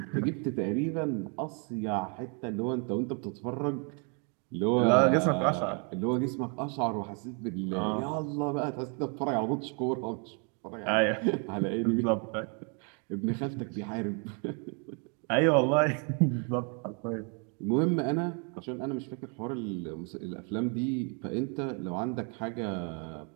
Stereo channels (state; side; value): quieter; left; 38.0 dB